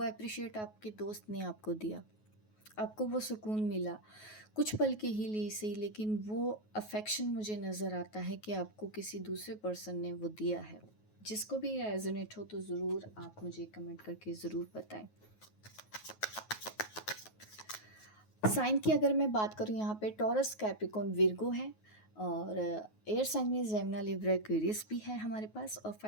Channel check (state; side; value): late; right; 9.4 ms